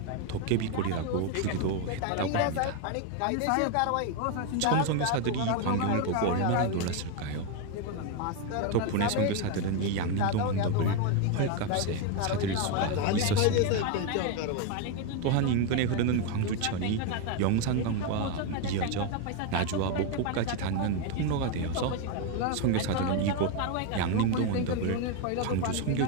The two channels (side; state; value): both; different; correlation 0.02